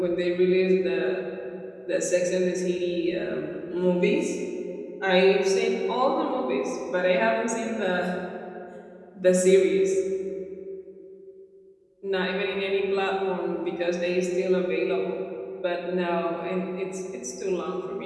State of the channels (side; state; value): both; identical; correlation 1.00